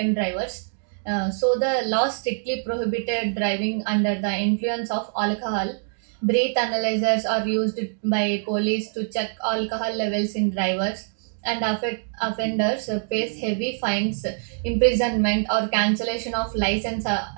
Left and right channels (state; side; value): silent; left; digital silence